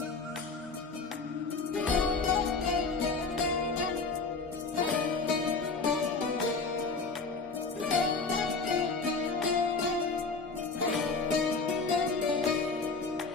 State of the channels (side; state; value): right; quieter; 4.2 dB